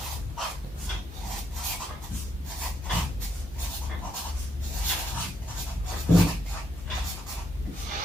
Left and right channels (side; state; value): both; normal; correlation 0.76